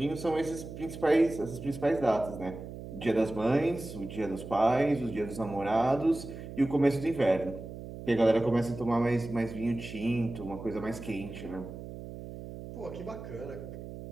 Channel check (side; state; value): right; noise; hum, 11 dB below the sound